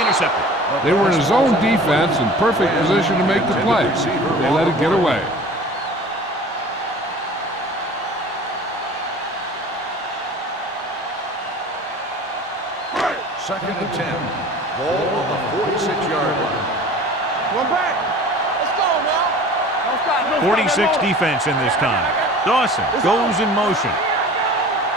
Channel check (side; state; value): both; normal; correlation 0.42